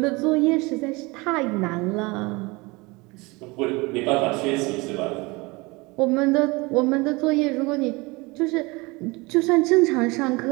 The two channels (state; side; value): quieter; left; 24.9 dB